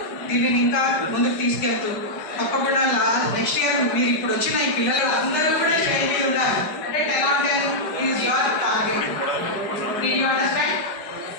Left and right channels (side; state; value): right; late; 5.1 ms